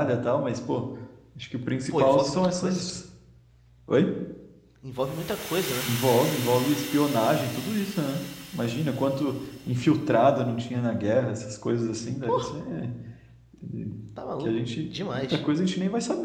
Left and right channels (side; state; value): both; identical; correlation 1.00